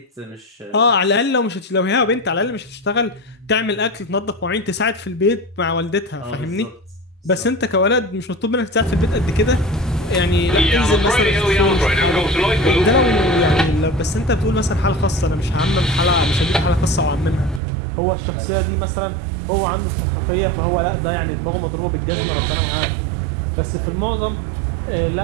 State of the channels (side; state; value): left; drops out; at 17.6 s